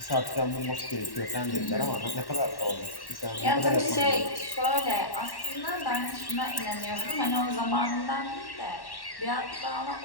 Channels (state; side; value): late; right; 1.1 ms